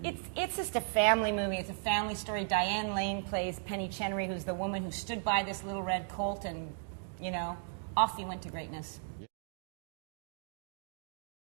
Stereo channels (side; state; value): left; silent; digital silence